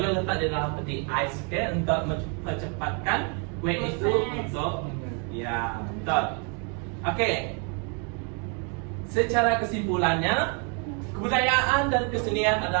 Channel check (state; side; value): quieter; left; 37.4 dB